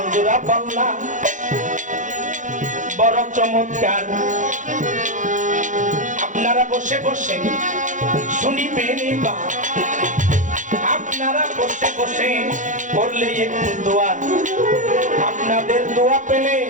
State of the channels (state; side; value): late; left; 0.37 ms